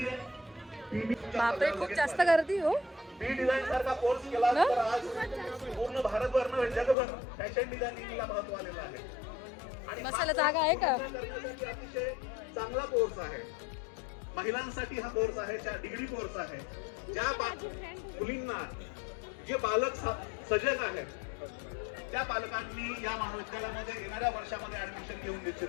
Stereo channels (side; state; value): right; drops out; at 7.0 s